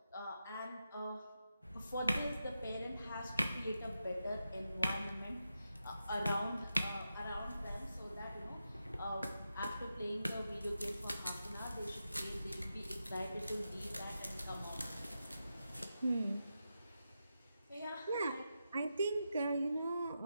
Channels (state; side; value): inverted; both; correlation -0.88